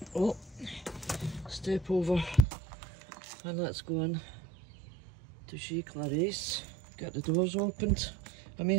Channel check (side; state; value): left; drops out; at 2.5 s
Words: Oh, step over and let's go in to see Clarice. Get the doors opened. I may